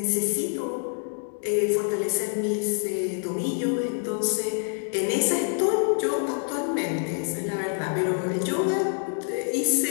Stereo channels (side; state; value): right; silent; 56 dB below the other